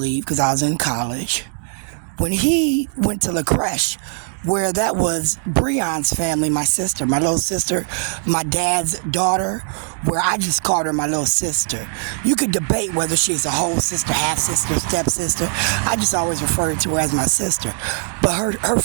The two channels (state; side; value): silent; left; 66 dB below the other